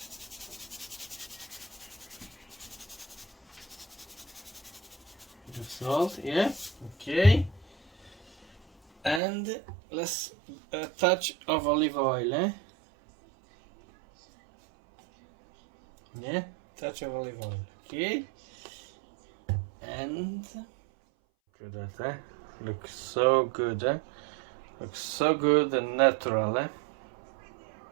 Salt, okay, and let's a touch of olive oil, touch of olive oil, okay, and look at that, looks so good, looks so good and natural,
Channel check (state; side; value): drops out; left; at 9.2 s